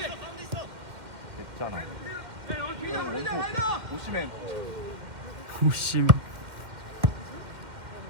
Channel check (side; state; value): left; late; 2.1 ms